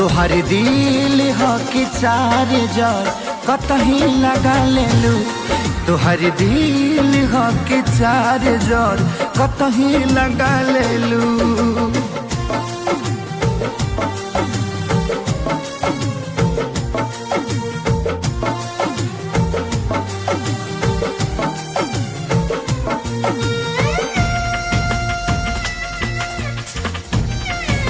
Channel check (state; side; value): identical; both; correlation 1.00